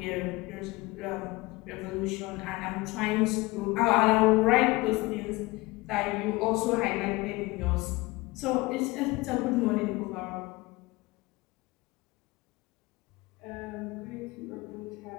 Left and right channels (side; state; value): right; quieter; 22.0 dB